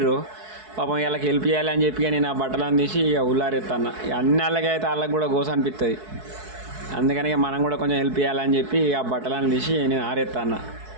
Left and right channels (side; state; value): left; late; 4.6 ms